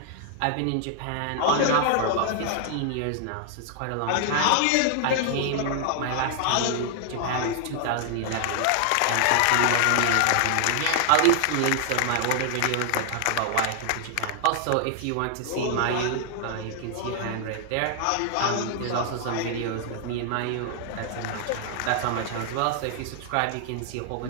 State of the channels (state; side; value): different; both; correlation 0.00